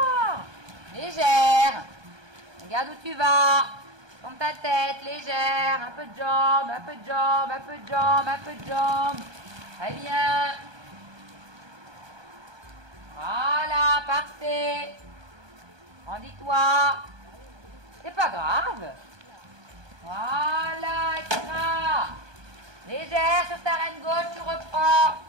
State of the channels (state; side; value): late; left; 1.2 ms